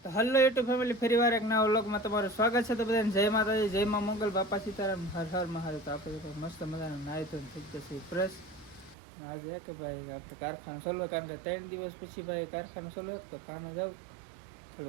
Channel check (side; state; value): left; drops out; at 9.0 s